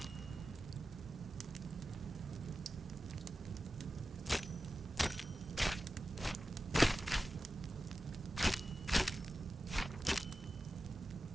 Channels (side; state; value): both; normal; correlation 0.94